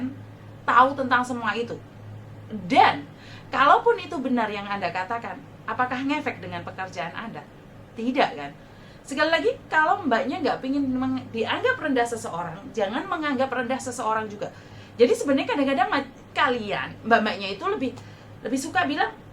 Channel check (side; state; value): both; identical; correlation 1.00